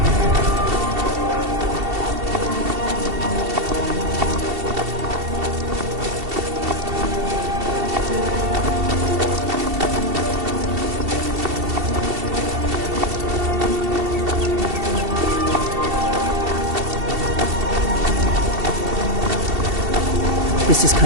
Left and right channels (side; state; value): left; late; 2.7 ms